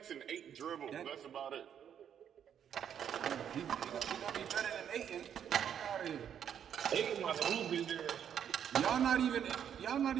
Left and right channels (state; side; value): quieter; left; 8.8 dB